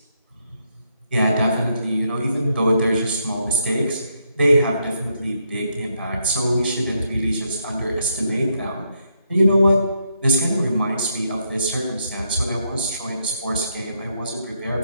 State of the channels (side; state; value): both; inverted; correlation -0.77